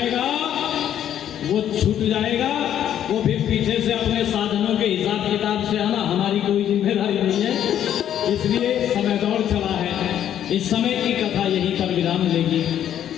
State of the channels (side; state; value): right; quieter; 10.4 dB